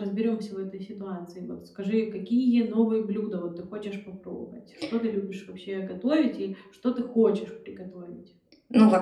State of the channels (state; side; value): identical; both; correlation 1.00